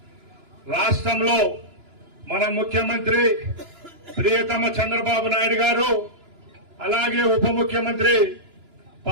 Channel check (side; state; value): left; late; 2.9 ms